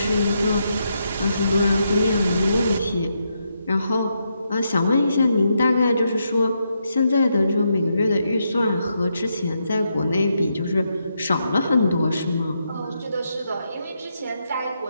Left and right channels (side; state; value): both; inverted; correlation -0.81